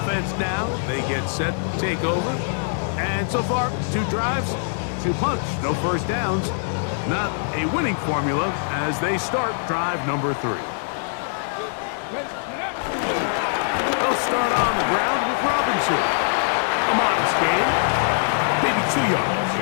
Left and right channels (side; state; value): right; silent; 63 dB below the other